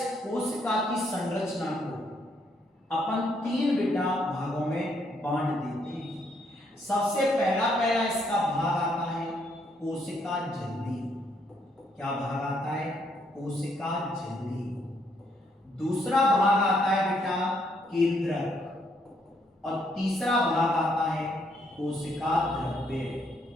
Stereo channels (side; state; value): both; normal; correlation 0.72